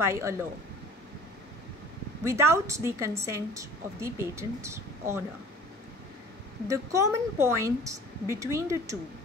a law without the consent of the patent owner. The common point between the two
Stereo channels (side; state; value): both; normal; correlation 0.47